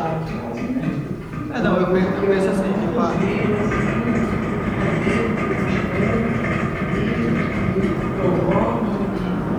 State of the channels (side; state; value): both; identical; correlation 1.00